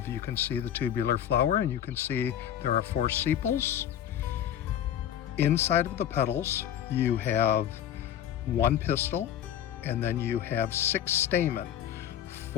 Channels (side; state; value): right; quieter; 10.3 dB